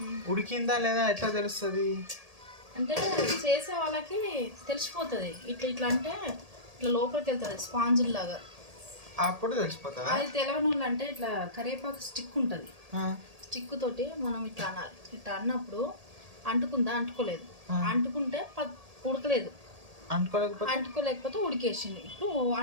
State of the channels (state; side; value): late; left; 1.8 ms